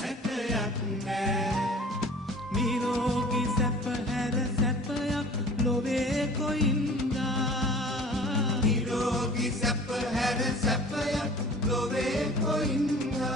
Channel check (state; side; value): normal; both; correlation 0.46